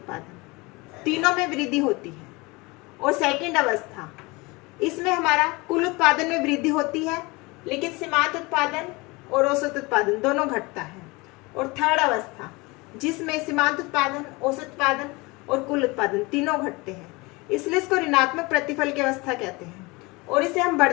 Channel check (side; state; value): right; quieter; 24.7 dB